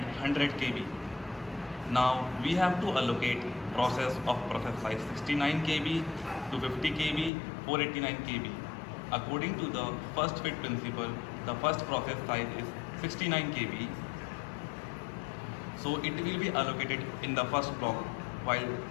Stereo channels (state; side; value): drops out; right; at 7.3 s